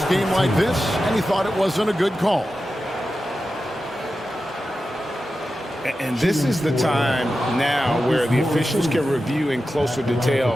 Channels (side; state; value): both; normal; correlation 0.92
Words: game like this, and he thought it wasn't a good call. And this is the time now where the officials can review in closer